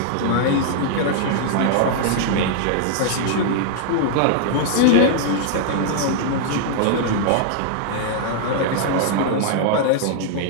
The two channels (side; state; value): both; different; correlation -0.01